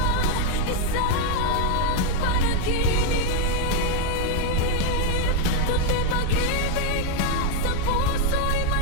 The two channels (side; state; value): both; different; correlation 0.01